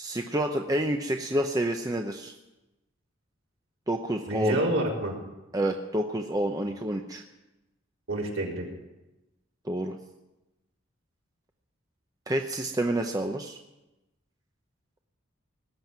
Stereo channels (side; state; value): both; normal; correlation 0.58